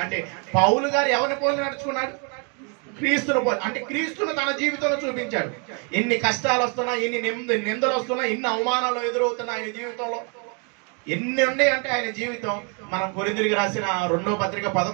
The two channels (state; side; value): quieter; left; 36.7 dB